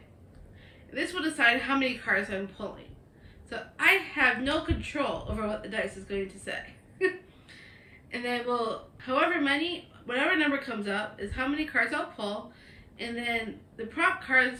This will decide how many cards I'm pulling. So I have no control over what the dice is going to say. And then whatever number comes up is how many cards I'll pull. And then the prop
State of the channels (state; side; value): identical; both; correlation 1.00